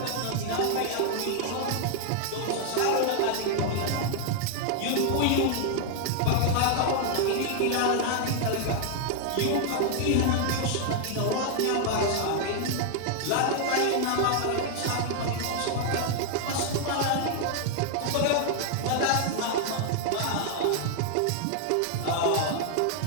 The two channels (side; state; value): both; different; correlation 0.00